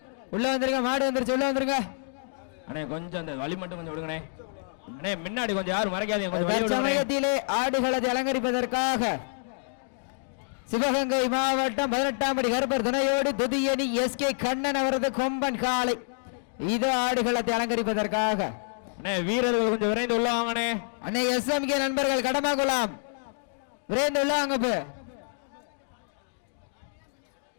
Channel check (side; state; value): right; silent; digital silence